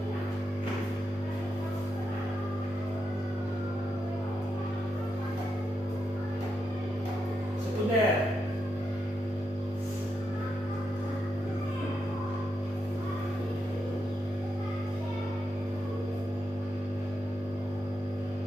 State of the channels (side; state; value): both; normal; correlation 0.84